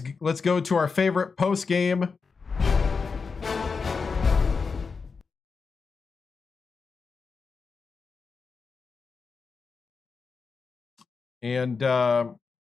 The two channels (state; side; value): quieter; right; 5.0 dB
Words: go to our favorite post game. And